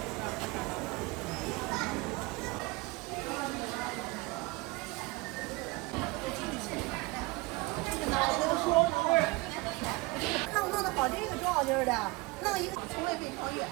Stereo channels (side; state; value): left; quieter; 23.0 dB